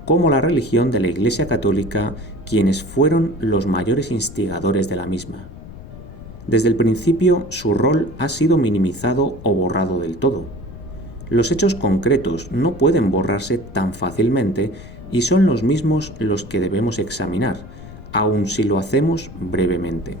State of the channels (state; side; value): noise; left; rumble, 16 dB below the sound